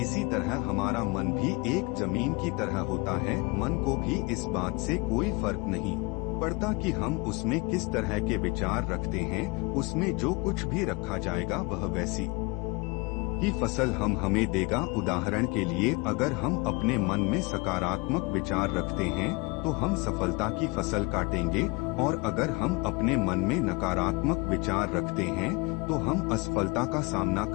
इसी तरह हमारा मन भी एक जमीन की तरह होता है। मन को भी इस बात से कोई फर्क नहीं पड़ता कि हम उसमें किस तरह के विचार रखते हैं। उसमें जो कुछ भी रखा जाएगा वह वैसी ही फसल हमें देगा। उदाहरण के लिए, अगर हम अपने मन में सकारात्मक विचार रखते हैं तो हम सफलता की फसल काटेंगे, और अगर हम अपने मन में नकारात्मक विचार रखते हैं तो हम असफलता का सामना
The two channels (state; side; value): quieter; right; 27.1 dB